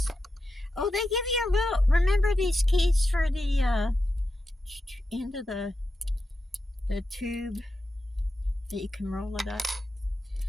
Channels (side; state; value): both; normal; correlation 0.89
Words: Oh, they give you a little, remember these keys for the end of the tube that you can roll it up?